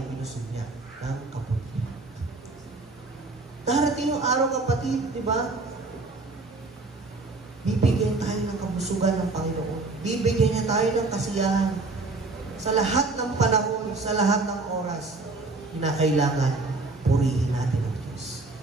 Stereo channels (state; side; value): quieter; left; 3.4 dB